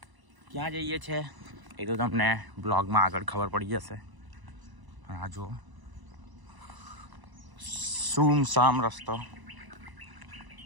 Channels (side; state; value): left; late; 1.0 ms